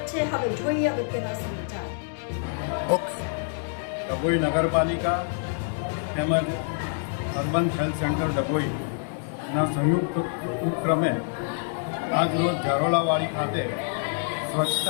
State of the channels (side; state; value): right; silent; digital silence